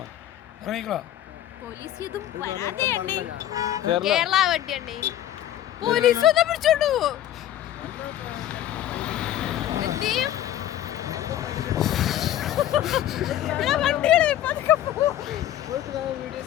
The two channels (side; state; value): right; quieter; 12.3 dB